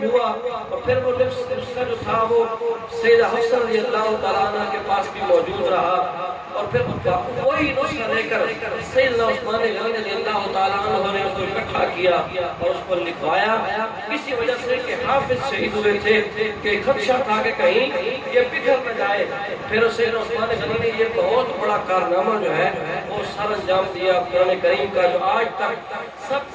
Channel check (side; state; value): both; identical; correlation 1.00